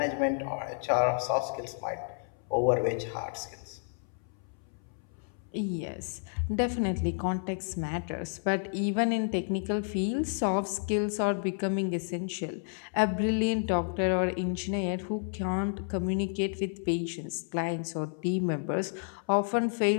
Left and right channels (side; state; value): right; silent; 57 dB below the other